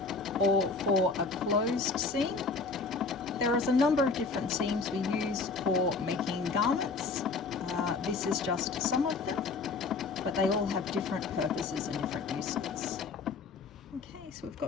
or for a closed seam. There is a number of different seams we use for making garments. This is just some of them, but they all have different purposes and different uses. Okay, so we've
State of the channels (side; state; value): right; quieter; 4.2 dB